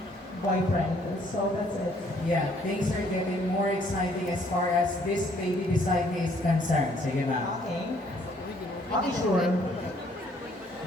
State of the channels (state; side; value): normal; both; correlation 0.64